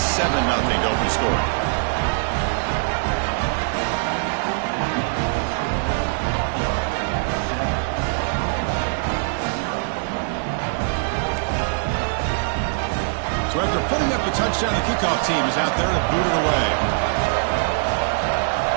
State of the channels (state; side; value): silent; left; digital silence